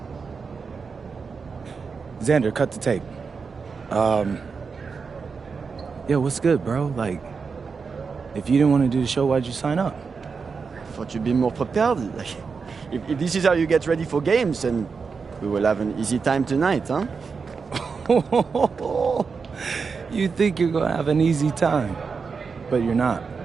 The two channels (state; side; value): quieter; left; 5.2 dB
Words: Xander, cut the tape. Yeah, what's good, bro? Like, if you didn't want to do the show, why'd you sign up? I thought you'd be more prepared. Like, if this is how you get ready for games, then we will have an easy time tonight, huh? You think you're gonna have an easy time, but you're not.